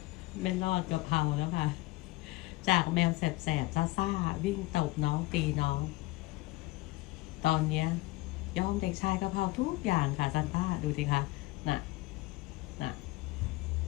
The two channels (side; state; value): right; quieter; 19.4 dB